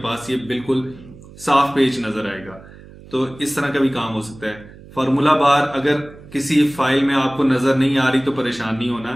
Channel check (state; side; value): noise; right; hum, 20 dB below the sound